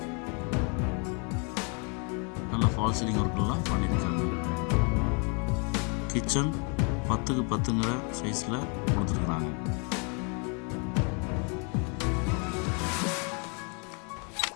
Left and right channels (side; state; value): right; quieter; 35.7 dB